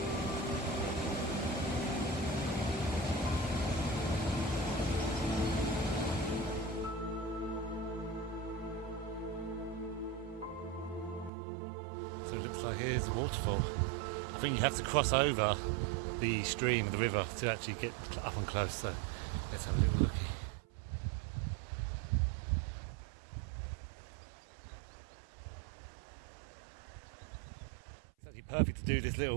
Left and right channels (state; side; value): drops out; left; at 11.3 s